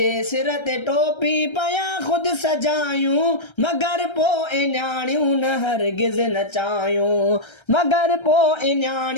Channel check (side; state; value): right; late; 1.3 ms